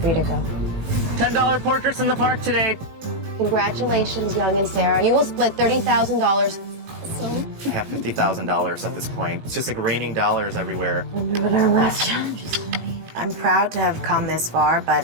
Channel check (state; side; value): late; left; 18 ms